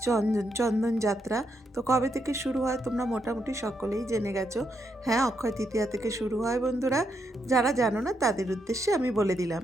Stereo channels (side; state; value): both; normal; correlation 0.79